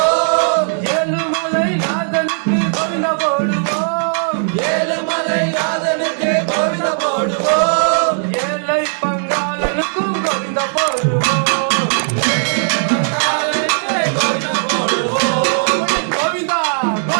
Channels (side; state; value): left; silent; digital silence